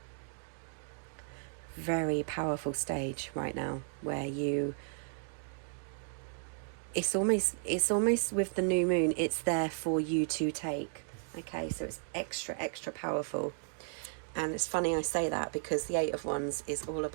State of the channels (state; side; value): silent; left; digital silence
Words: very powerful stage right now where it's almost with the new moon, it's there for you to take. Okay, so it's extra powerful. And it's funny I say that, because the Eight of Wands is all